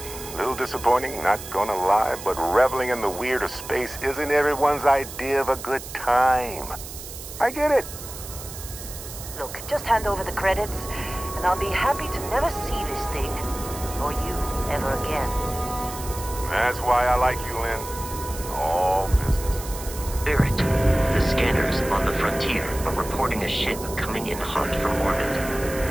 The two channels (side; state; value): right; noise; hiss, 12 dB below the sound